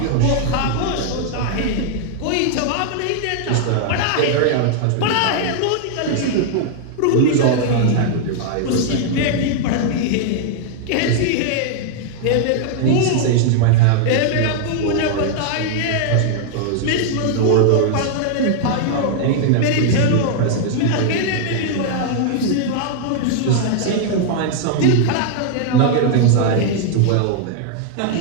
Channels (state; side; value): different; both; correlation 0.00